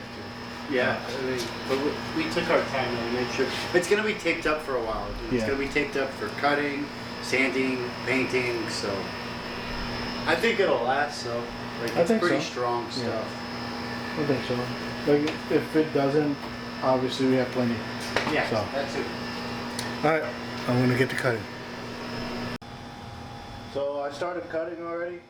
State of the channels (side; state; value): both; identical; correlation 1.00